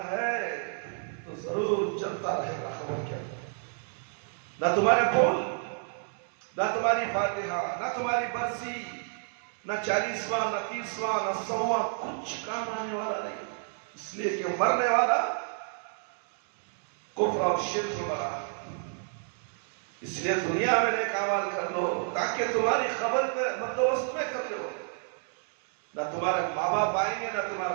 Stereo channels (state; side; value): silent; left; 58 dB below the other